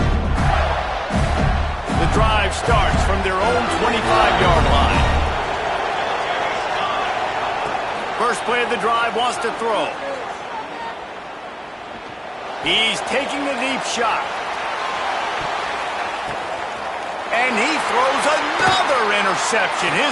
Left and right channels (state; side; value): identical; both; correlation 1.00